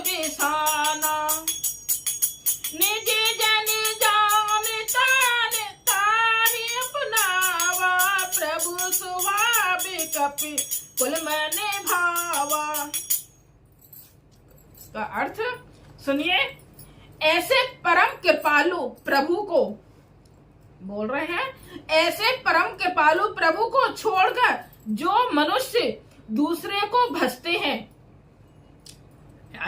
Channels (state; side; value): identical; both; correlation 1.00